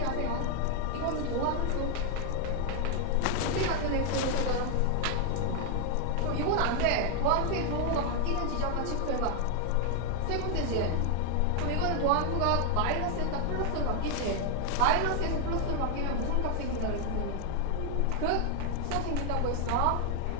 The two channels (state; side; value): different; both; correlation 0.00